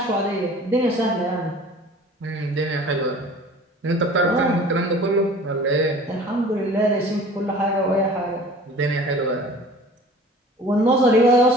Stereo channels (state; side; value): normal; both; correlation 0.45